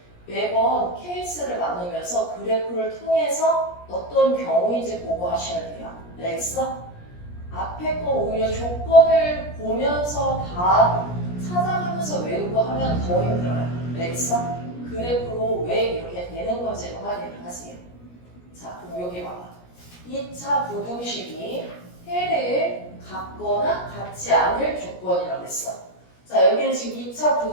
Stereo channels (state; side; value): late; right; 17 ms